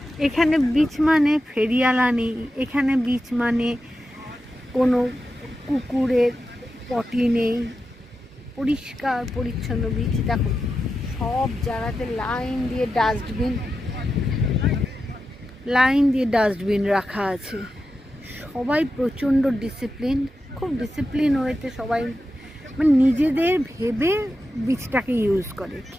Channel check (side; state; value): both; normal; correlation 0.90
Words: এখানে বিচ মানে ফেরিওয়ালা নেই, এখানে বিচ মানে কোনো কুকুরের পটি নেই, পরিষ্কার পরিচ্ছন্ন বিচ। দেখো সব জায়গাতে লাইন দিয়ে ডাস্টবিন রাখা আছে। সবাই প্রচণ্ড ডিসিপ্লিন, খুব ডিসিপ্লিন ওয়েতে সবাই মানে নিজেদের ভেবে বিচটাকে ইউজ করে।